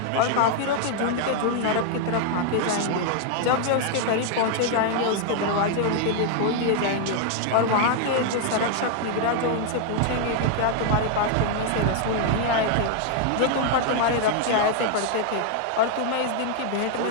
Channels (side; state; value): both; different; correlation 0.00